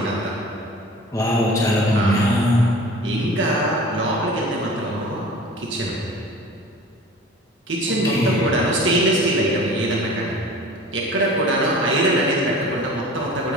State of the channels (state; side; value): normal; both; correlation 0.41